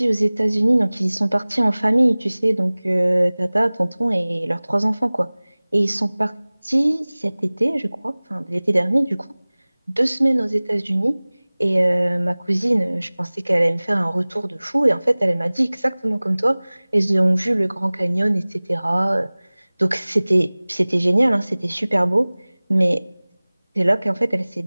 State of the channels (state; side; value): inverted; both; correlation -1.00